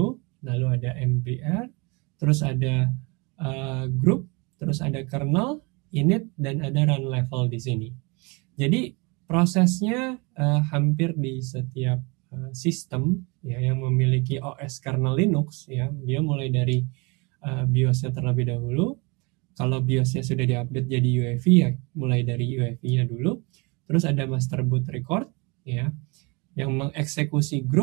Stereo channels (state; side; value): quieter; left; 28.7 dB